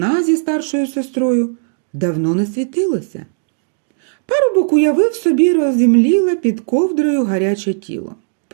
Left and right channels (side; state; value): left; silent; digital silence